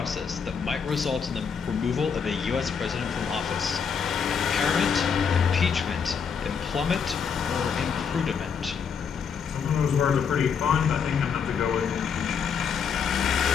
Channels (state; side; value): quieter; right; 6.6 dB